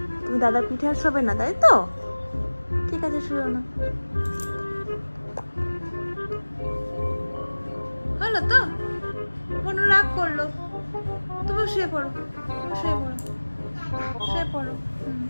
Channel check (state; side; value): inverted; both; correlation -1.00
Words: তুমি দাদার পিঠে আর শোবে না, তাই তো? ঠিক আছে শুয়ে না, হলো তো? বনু রাগ করলো, তুমি শুয়ে পড়ো, তুমি শুয়ে পড়ো, শুয়ে পড়ো।